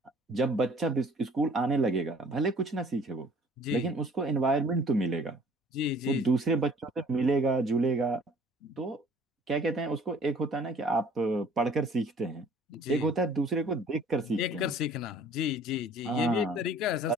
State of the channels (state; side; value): normal; both; correlation 0.53